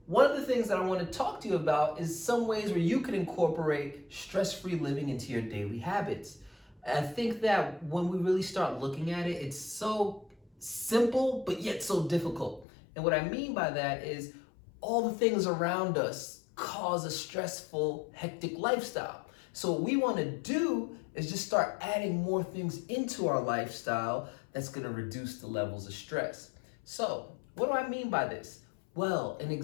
one of the things that I want to talk to you about is some ways where you can incorporate stress-free living into your daily habits. I think that when we really start looking at it, it's so simple, but yet so difficult. And what I mean by that is all the things around us cause a stressful, hectic lifestyle. So what we want to do is just start adding more things into our lifestyle that's going to reduce the levels of stress. So what do I mean by this? Well, an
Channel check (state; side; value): drops out; right; at 12.7 s